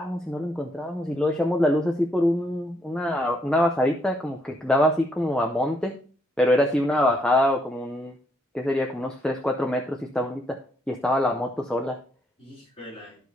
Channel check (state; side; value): normal; both; correlation 0.73